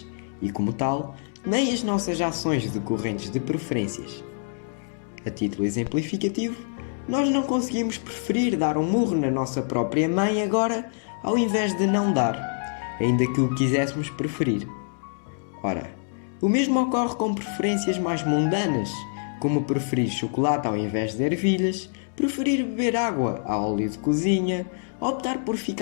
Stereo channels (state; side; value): silent; right; digital silence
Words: e, como tal, nem as nossas ações decorrentes de preferências. A título exemplificativo, nós não conseguimos preferir dar um murro na nossa própria mãe agora ao invés de não dar, ainda que o quiséssemos preferir. Ora, o mesmo ocorre com preferências mais mundanas, como preferir chocolate ao invés de ervilhas, preferir beber água a óleo de cozinha, optar por